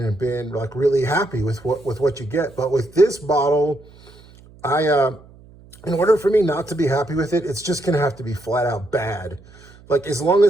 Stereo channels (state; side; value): noise; right; hum, 24 dB below the sound